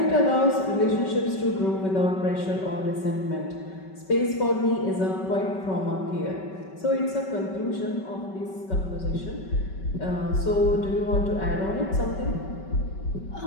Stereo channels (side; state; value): right; late; 5.3 ms